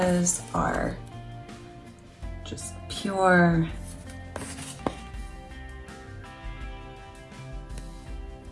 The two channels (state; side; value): identical; both; correlation 1.00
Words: are just pure